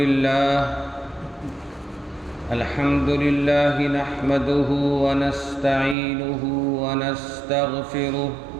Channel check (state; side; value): drops out; left; at 6.0 s